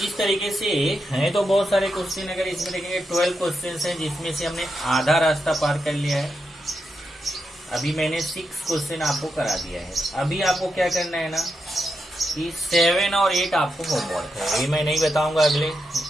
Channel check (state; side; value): normal; both; correlation 0.85